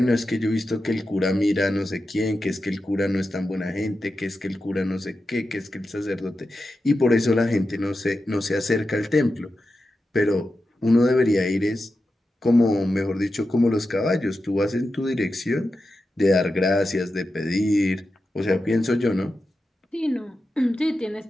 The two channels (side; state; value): both; normal; correlation 0.90